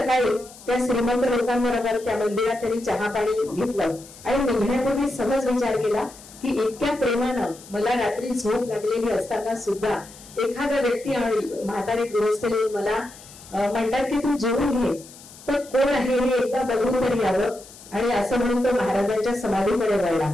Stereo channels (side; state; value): left; noise; hiss, 20 dB below the sound